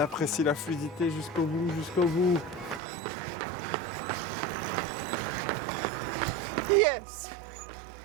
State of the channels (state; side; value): drops out; left; at 2.8 s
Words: la fluidité jusqu'au bout, Yes.